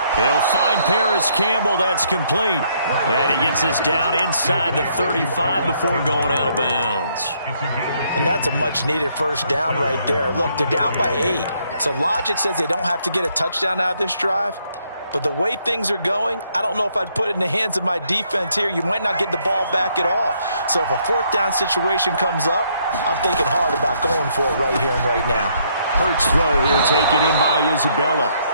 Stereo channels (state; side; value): inverted; both; correlation -0.70